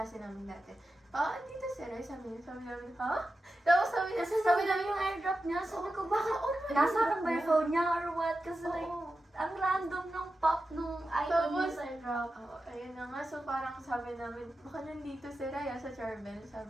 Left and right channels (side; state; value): both; normal; correlation 0.91